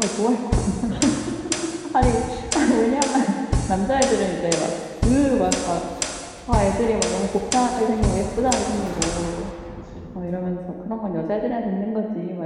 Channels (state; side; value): identical; both; correlation 1.00